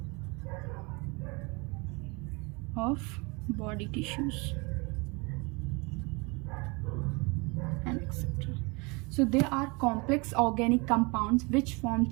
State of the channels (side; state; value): left; quieter; 28.4 dB